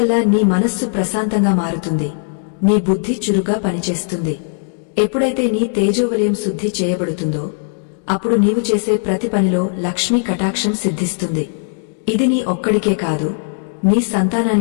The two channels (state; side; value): silent; right; digital silence